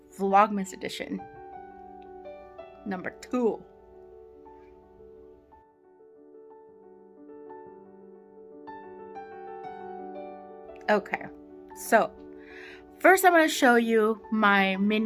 Vlogmas edition, number 2. Okay, so first I'm going to show you my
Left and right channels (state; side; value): identical; both; correlation 1.00